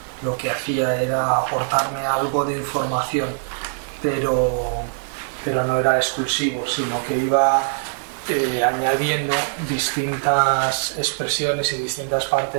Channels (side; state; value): left; silent; 64 dB below the other